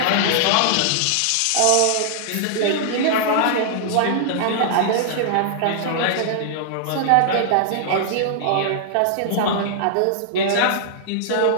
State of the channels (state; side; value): different; both; correlation -0.01